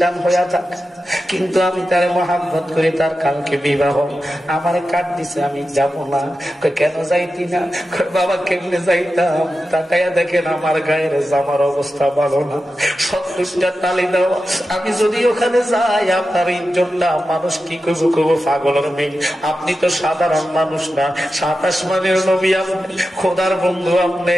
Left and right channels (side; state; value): both; normal; correlation 0.91